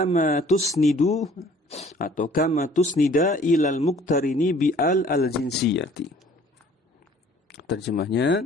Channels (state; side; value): normal; both; correlation 0.54